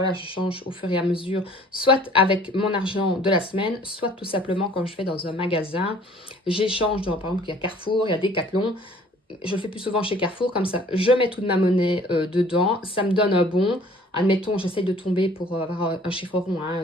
je change au fur et à mesure, soit avec mon argent de la semaine, soit tout simplement quand je vais dans un magasin, j'échange, par exemple, il y a Carrefour, il y a Decathlon, je le fais plus souvent chez Carrefour, comme ça, je mets toute ma monnaie dedans, ça me donne un bon, admettons, j'essaye de tomber pour avoir un chiffre rond,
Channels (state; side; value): normal; both; correlation 0.53